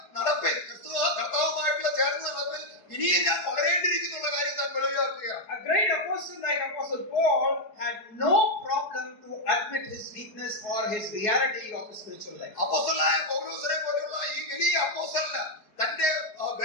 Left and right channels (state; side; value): late; right; 4.7 ms